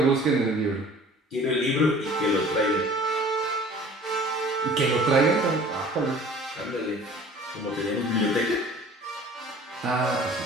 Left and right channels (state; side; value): normal; both; correlation 0.48